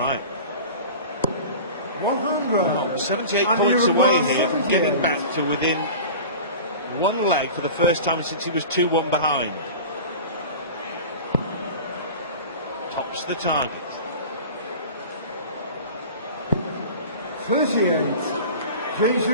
100. 78 points away here from getting back to within 1 leg for the first time since he was 2-1 behind. Tops the target. 38. James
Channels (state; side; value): inverted; both; correlation -0.36